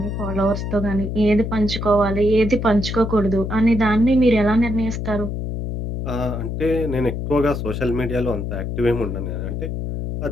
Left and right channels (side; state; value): left; noise; hum, 4 dB below the sound